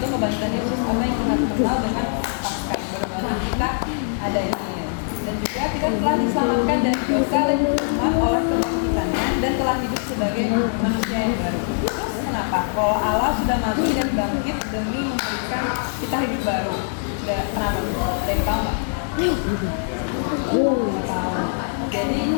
kebangkitan Yesus atau yang kita kenal dengan Paskah. Baru kita ada ini. Dan juga kita telah diselamatkan dari dosa dan hukuman oleh kebangkitannya dan telah hidup sebagai manusia yang baru. Terus kenapa? Kalau Allah sudah mati dan bangkit demi memberikan kita hidup baru. Kenapa? Ada yang tahu nggak? Jadi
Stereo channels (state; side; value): silent; right; digital silence